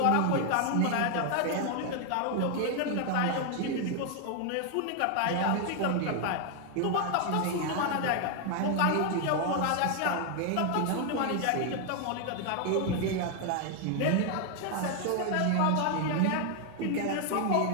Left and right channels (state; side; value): different; both; correlation 0.00